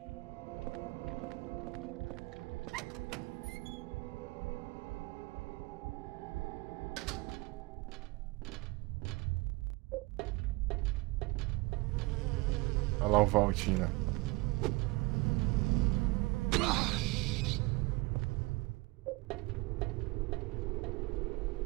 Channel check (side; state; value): left; quieter; 23.9 dB